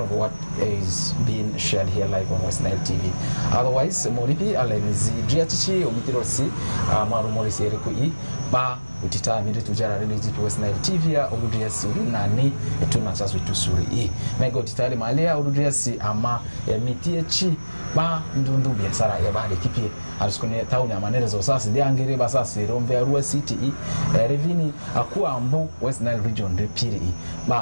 of what is being shared here live on West Nile TV. Otherwise, moripi alenizi driachichi omitirosi marumorisi erikui ba utita mire tujara relezi to West Nile TV ya udriasi nani etuna chasu tusuri e mega utitali malea udriasi ama emitie chi ba ndundu biasara ya bade kipie aliskone town ya manerezo sasa diangire basasi romve Arua City revini akuwa ambu West Nile region repiri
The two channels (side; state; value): both; inverted; correlation -1.00